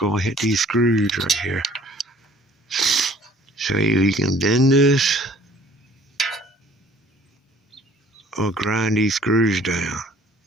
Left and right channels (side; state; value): both; normal; correlation 0.55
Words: hit these screws right here. So you can bend this or grind these screws down.